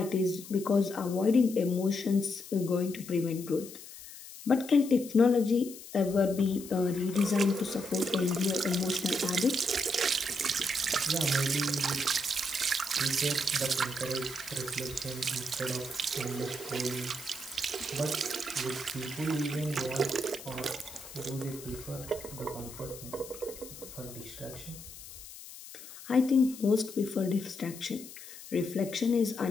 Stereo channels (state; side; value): noise; left; hiss, 15 dB below the sound